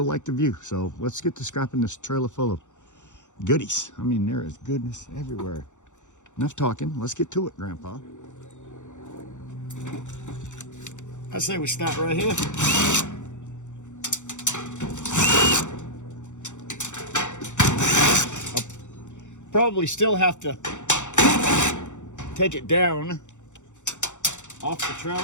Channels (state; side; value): late; right; 0.85 ms